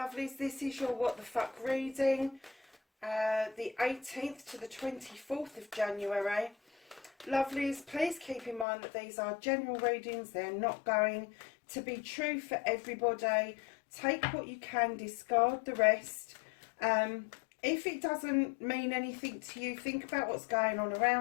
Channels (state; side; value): drops out; right; at 8.7 s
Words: This is your What the Fuck reading, the 18th to the 24th of January. Lovelies, please keep in mind that these are general readings. They're not going to be true for everybody. Take what you can, discard the rest. If it doesn't mean anything to you, think about what's going on